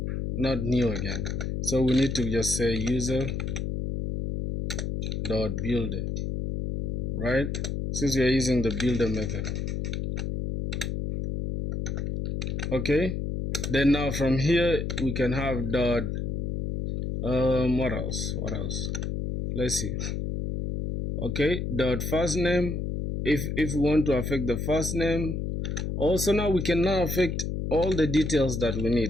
not new again. So we need to just say user.builder, right? Since we are using the builder method. Okay. Then now from here we can have dot what else? Let's see. Okay, dot first name. If we want to affect the first name, also now we can now affect all the details that we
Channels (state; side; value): noise; left; hum, 2 dB below the sound